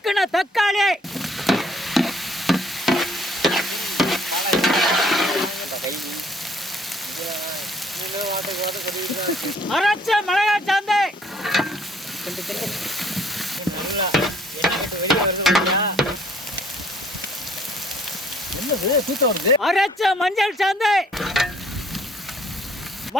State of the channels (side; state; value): both; normal; correlation 0.61